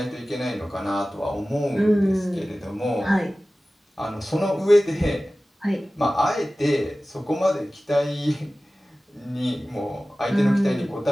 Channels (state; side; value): normal; both; correlation 0.97